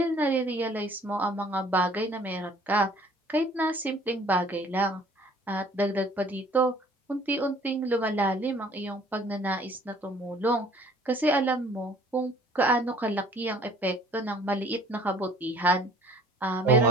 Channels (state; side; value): normal; both; correlation 0.54